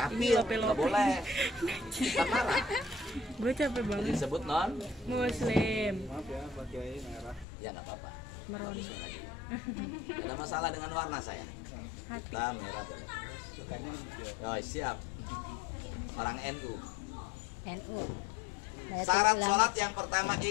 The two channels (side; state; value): right; drops out; at 7.5 s